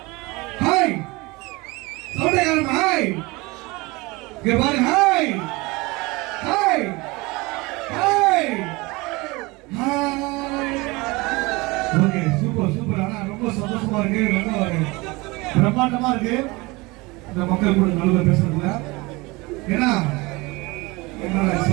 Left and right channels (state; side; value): quieter; left; 23.8 dB